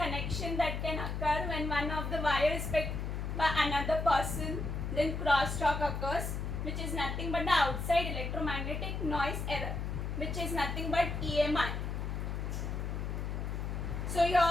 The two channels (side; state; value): left; noise; hum, 3 dB below the sound